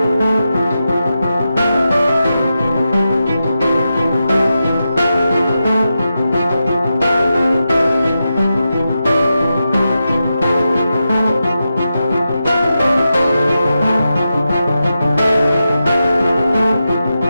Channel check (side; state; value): both; inverted; correlation -0.89